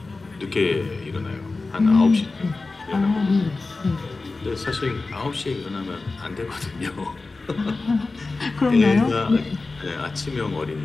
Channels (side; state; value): right; quieter; 3.6 dB